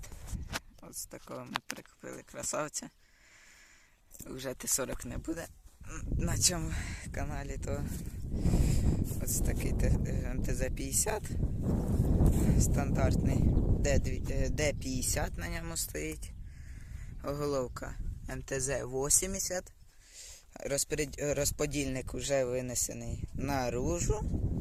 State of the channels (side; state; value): both; identical; correlation 1.00